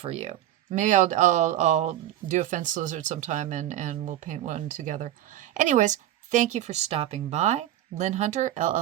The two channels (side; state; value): left; quieter; 13.0 dB